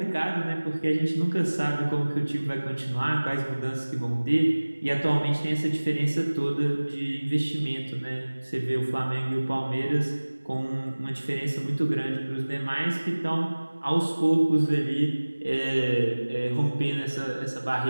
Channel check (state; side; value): inverted; both; correlation -1.00